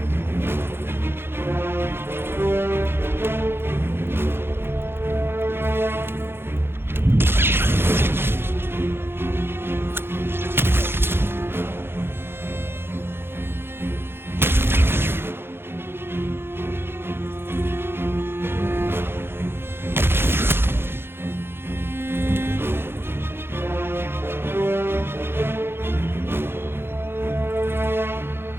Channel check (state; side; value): late; left; 0.11 ms